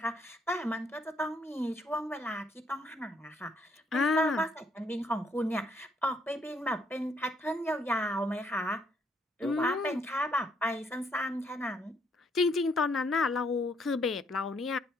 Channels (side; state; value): both; normal; correlation 0.70